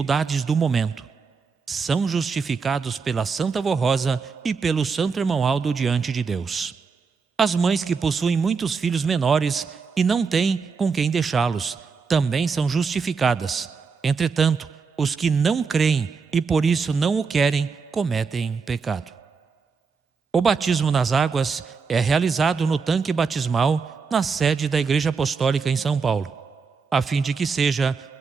do momento. São justificados pela Santa Vó Rosa e pelo Santo Irmão Aldo diante de Deus. As mães que possuem muitos filhos menores e não têm com quem deixá-los, também são justificadas. Entretanto, os que não creem e por isso não o querem, cometem pecado. O batismo nas águas é realizado no tanque batismal na sede da Igreja Apostólica em São Paulo, a fim de que seja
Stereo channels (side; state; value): left; quieter; 5.2 dB